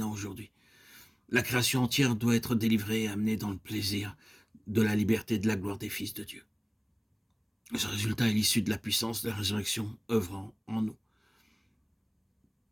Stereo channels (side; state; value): both; identical; correlation 1.00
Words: aujourd'hui. La création entière doit être délivrée et amenée dans le plaisir de la liberté et de la gloire des fils de Dieu. Ce résultat est l'issue de la puissance de la résurrection œuvrant en nous.